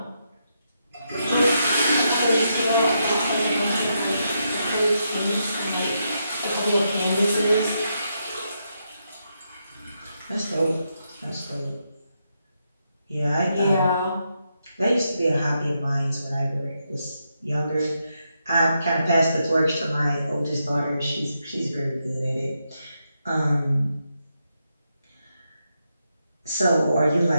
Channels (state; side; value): inverted; both; correlation -0.82